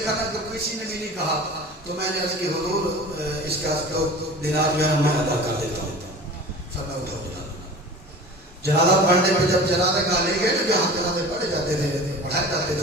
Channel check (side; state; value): both; normal; correlation 0.38